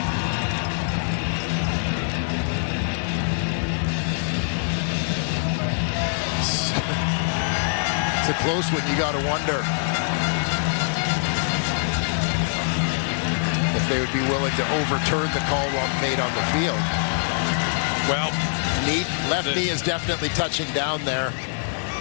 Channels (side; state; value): right; silent; digital silence